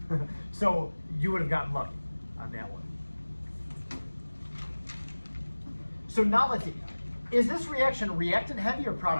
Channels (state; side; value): inverted; both; correlation -1.00